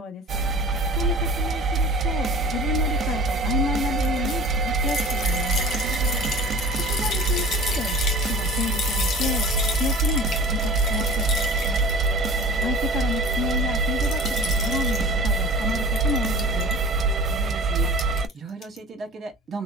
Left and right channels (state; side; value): normal; both; correlation 0.42